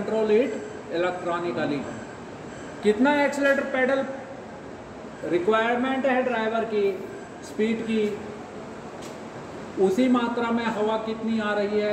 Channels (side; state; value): both; identical; correlation 1.00